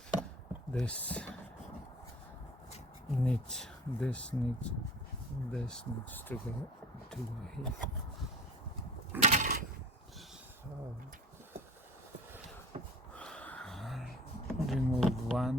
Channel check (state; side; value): normal; both; correlation 0.42